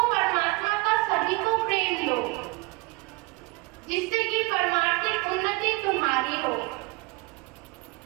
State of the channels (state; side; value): quieter; left; 25.6 dB